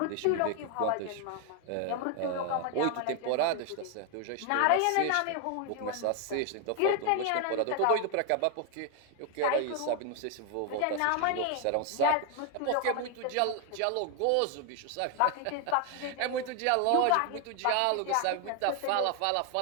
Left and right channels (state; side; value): different; both; correlation 0.01